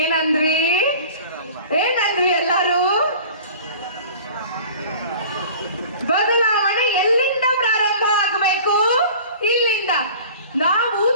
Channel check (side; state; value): both; inverted; correlation -0.43